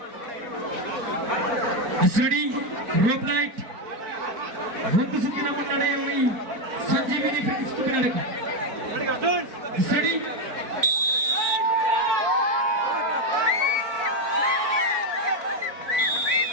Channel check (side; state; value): left; late; 4.5 ms